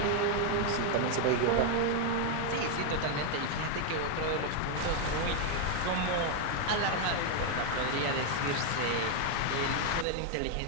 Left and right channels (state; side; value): different; both; correlation 0.00